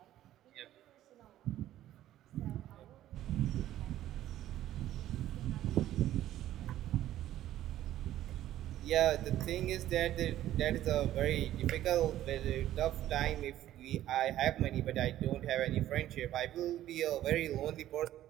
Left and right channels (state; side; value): quieter; left; 13.1 dB